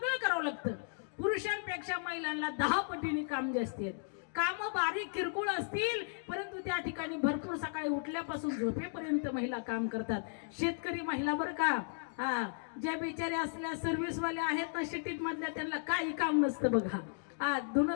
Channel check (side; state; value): right; silent; digital silence